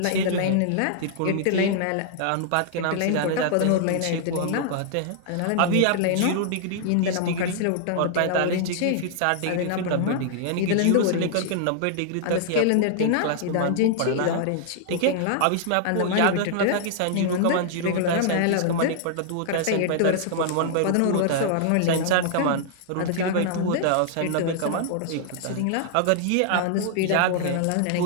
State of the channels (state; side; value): different; both; correlation -0.01